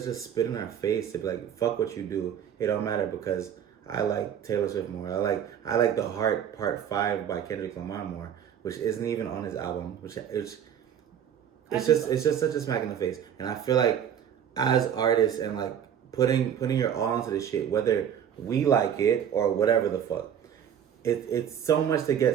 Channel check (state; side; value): quieter; left; 9.0 dB